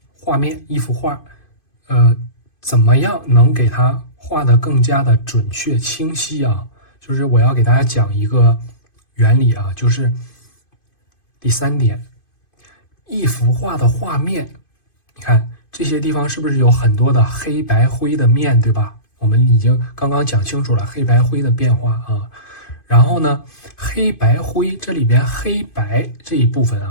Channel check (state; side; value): late; right; 2.5 ms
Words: 画面，一幅画，怎么样能给它画得更加的准确清晰啊？就是我要给大家讲一个原理啊，就是第3点，一幅画的画面，你看这些地方是不是有很多的黑白灰的面，对吧？我们已经刚刚讲清楚了黑白灰的变化啊。然后呢，黑白灰这里边黑白这一部分